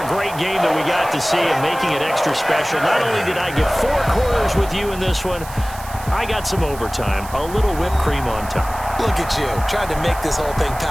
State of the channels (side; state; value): right; noise; hiss, 16 dB below the sound